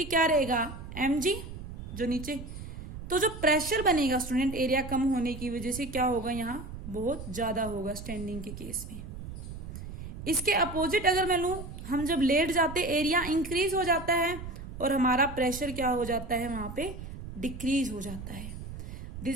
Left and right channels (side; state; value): right; noise; rumble, 10 dB below the sound